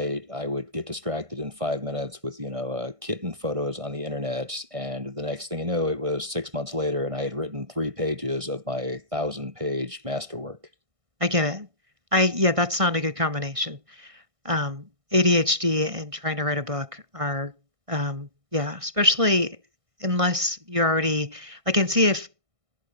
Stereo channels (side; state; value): left; late; 1.6 ms